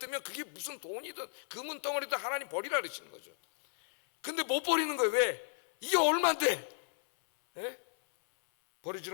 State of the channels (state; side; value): silent; right; 55 dB below the other